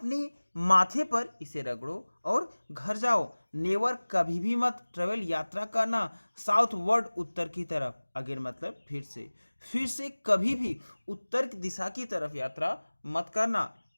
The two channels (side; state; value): both; inverted; correlation -1.00